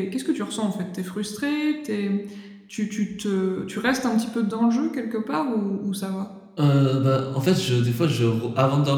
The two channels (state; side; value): identical; both; correlation 1.00